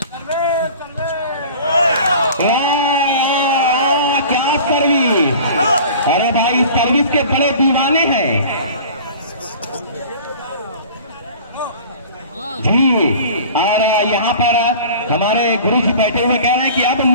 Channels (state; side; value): inverted; both; correlation -0.42